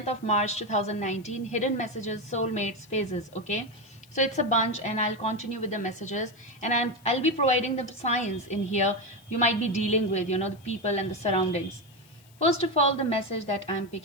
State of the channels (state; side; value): noise; left; hiss, 28 dB below the sound